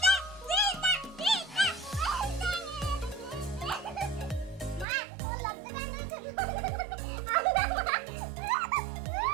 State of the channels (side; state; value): left; drops out; at 4.9 s